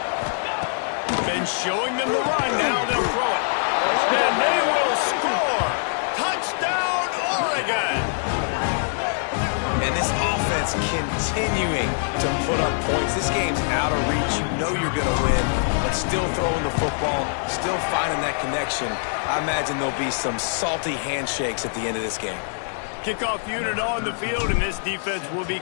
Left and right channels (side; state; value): right; silent; digital silence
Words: Been showing them the run. Now they'll throw it. And they will score. continuing to put up points. This game's out of reach. You know you're going to win, but still throwing the football, still finding that connection. I imagine there'll be some salty handshakes at the end of this game. Kickoff unit on the field, and this defense will be